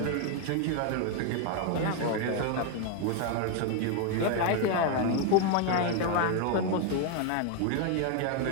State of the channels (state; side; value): different; both; correlation 0.01